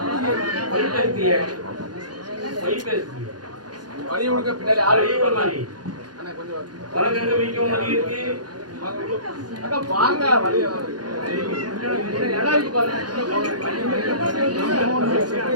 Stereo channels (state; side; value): late; left; 0.69 ms